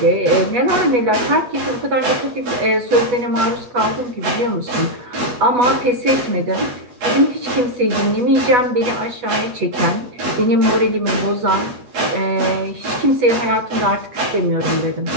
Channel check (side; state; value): left; late; 8.2 ms